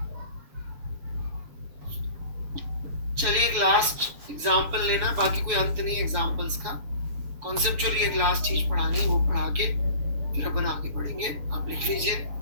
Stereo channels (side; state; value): left; late; 7.1 ms